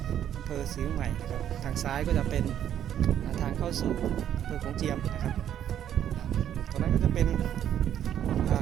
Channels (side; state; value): left; quieter; 10.2 dB